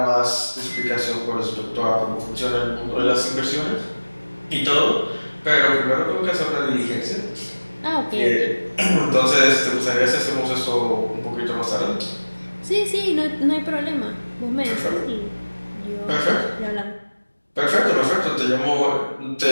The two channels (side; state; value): both; inverted; correlation -1.00